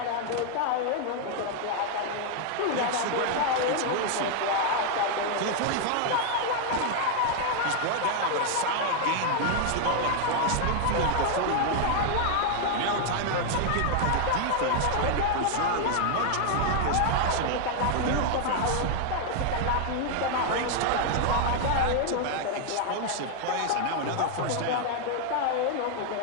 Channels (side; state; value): both; different; correlation 0.00